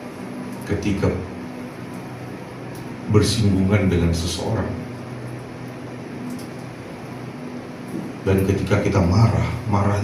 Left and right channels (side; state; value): both; identical; correlation 1.00